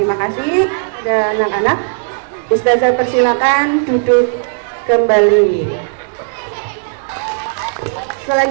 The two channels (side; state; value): left; silent; digital silence